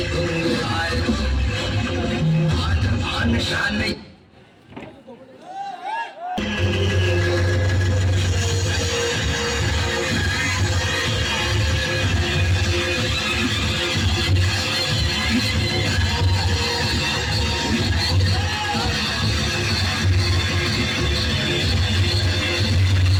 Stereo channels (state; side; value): identical; both; correlation 1.00